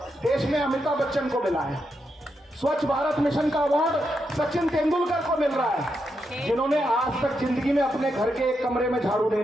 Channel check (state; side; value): normal; both; correlation 0.84